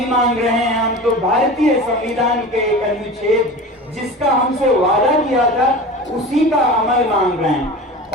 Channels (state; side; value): normal; both; correlation 0.33